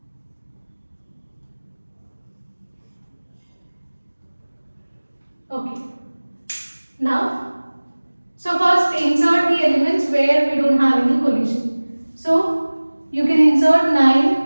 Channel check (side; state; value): both; inverted; correlation -1.00